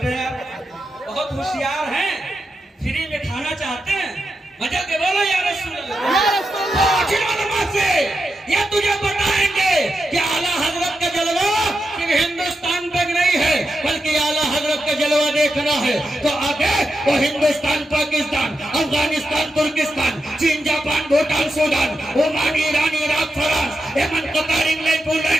हैं। बहुत होशियार हैं, फ्री में खाना चाहते हैं, मजा के बोलो या रसूल अल्लाह से। ये तुझे बताएंगे कि आला हजरत का जलवा सिर्फ हिंदुस्तान तक नहीं है, बल्कि आला हजरत का जलवा देखना है तो आगे वो हिंदुस्तान, पाकिस्तान, अफगानिस्तान, तुर्किस्तान, चीन, Japan, Bhutan, Sudan, Oman, Iran, Iraq, France, Yemen, Qatar, England,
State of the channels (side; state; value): both; normal; correlation 0.87